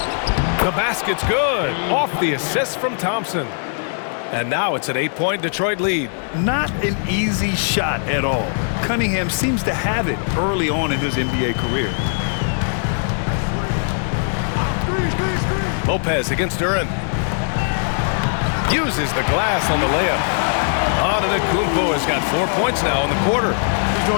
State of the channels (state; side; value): silent; right; 66 dB below the other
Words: The basket's good. Off the assist from Thompson. And now it's an 8-point Detroit lead. Not an easy shot at all. Cunningham seems to have it early on in his NBA career. Lopez against Duran. Uses the glass on the layup. Antetokounmpo has got 4 points now in the quarter. He's